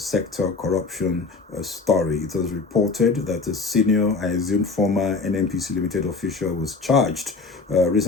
corruption story. It was reported that a senior, I assume former NNPC Limited official was charged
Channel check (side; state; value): right; quieter; 4.1 dB